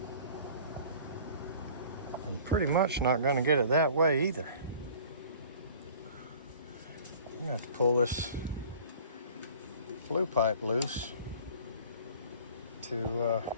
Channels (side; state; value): both; inverted; correlation -0.47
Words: And pretty much not going to get it that way either. You have to pull this flue pipe loose to